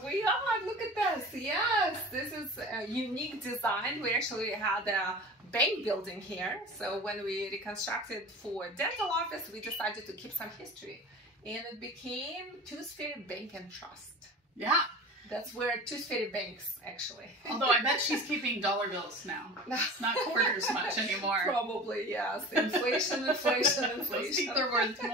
We are. Look at this. Yes, this is a unique design. We actually had a bank building here. So when we reconstructed for a dental office, we decided to keep some history. And it became Tooth Fairy Bank and Trust. Yeah. That's where Tooth Fairy banks, actually. Although I bet she's keeping dollar bills now. It's not quarters much anymore. Probably, yes. Inflation, inflation, inflation. Those teeth are worth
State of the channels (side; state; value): both; normal; correlation 0.36